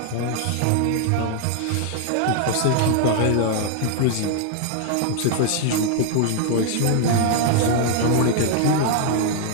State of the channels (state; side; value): different; both; correlation 0.00